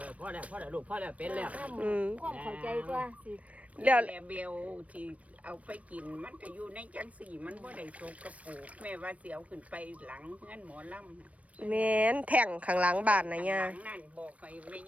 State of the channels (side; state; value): left; late; 0.066 ms